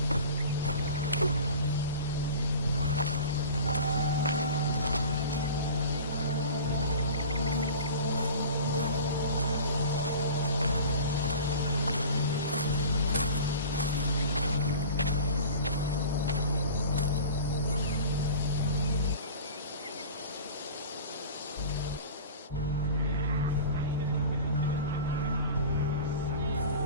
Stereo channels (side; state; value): both; inverted; correlation -0.38